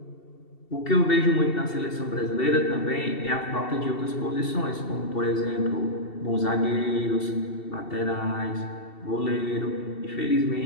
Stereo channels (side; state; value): right; late; 2.7 ms